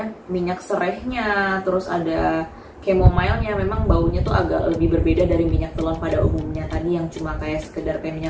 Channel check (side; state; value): both; identical; correlation 1.00